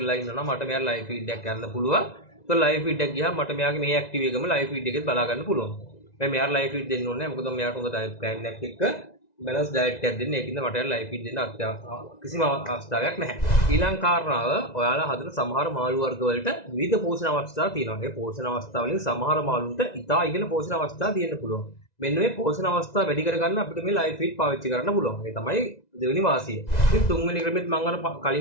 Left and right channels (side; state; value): right; late; 1.9 ms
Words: ඉන්නවා නම් මට මෙයා ලයිව් ෆීඩ් එකක් ගන්න පුළුවන්. ඒක ලයිව් ෆීඩ් එකක් ගියාම මට මෙයාගේ මේ ඇක්ටිව් එකම ලයිව් ෆීඩ් එකෙත් බලා ගන්න පුළුවන්. මම මෙයාට ලයිව් ෆීඩ් දෙන්න ඕනේ නැහැ. මොකද මෙයාට හොඳ ඩයට් ප්ලෑන් එකක් එක්ක බැලන්ස් ඩයට් එකක් දෙන්න. ඒකින්ද මට ලයිව් ෆීඩ් දෙන්න කිසිම අවස්ථාවක් නැහැ. ඊළඟ කාරණාව ඔයාලා හදන සමහර මාළු වර්ග වලට විවිධ පෝෂණ අවස්ථා තියෙනවා. ඒ පෝෂණ අවස්ථා වලින් සමහර මාළුන්ට ඉතා ඉහළ පෝෂණ අවස්ථා තියෙන්න පුළුවන්. මෙන්න මේ පෝෂණ අවස්ථා වැඩි කරගන්න අපිට මේ ලයිව් ෆීඩ් පාවිච්චි කරන්න පුළුවන්. ඒ තමයි දෙවෙනි වාසිය. ඉතින් තුන්වෙනි ක්‍රමෙත් මම අර